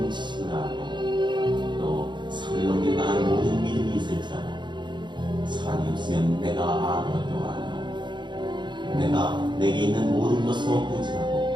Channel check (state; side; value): late; left; 0.22 ms